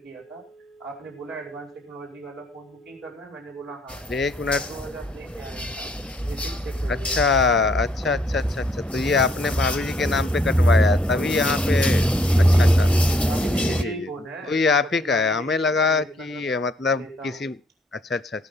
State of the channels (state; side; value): normal; both; correlation 0.67